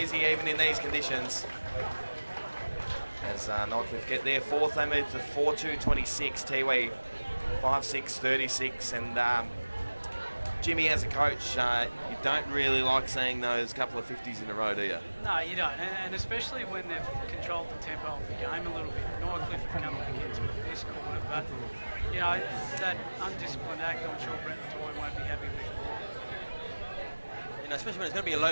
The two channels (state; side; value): inverted; both; correlation -1.00